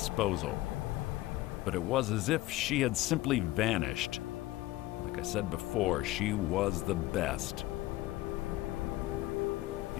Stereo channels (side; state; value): right; quieter; 17.2 dB